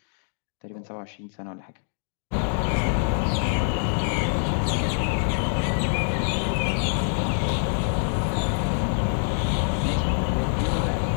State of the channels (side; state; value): right; silent; 62 dB below the other